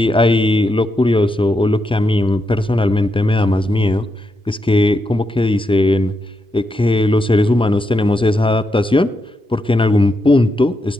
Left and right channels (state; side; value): normal; both; correlation 0.83